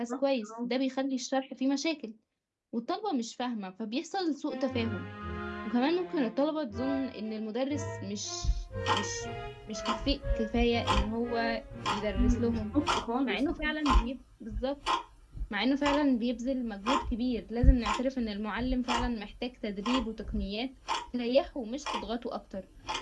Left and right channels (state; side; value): identical; both; correlation 1.00